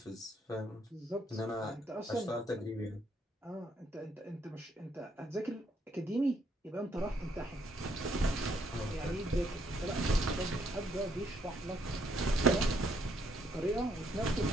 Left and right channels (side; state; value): both; normal; correlation 0.71